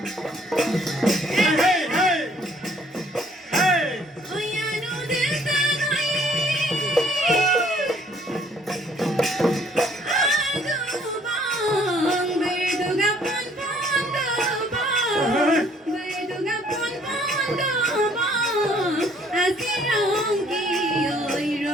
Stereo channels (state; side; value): normal; both; correlation 0.61